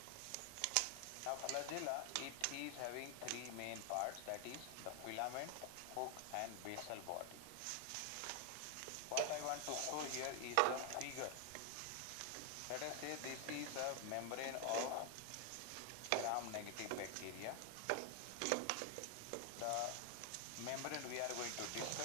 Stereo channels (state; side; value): different; both; correlation 0.00